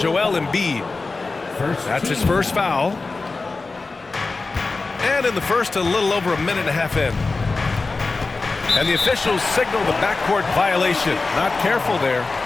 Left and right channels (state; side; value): quieter; right; 3.8 dB